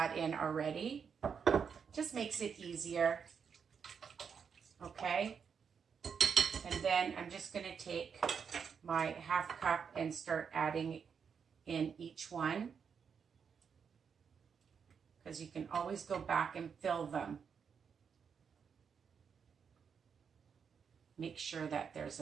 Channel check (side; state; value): left; quieter; 6.6 dB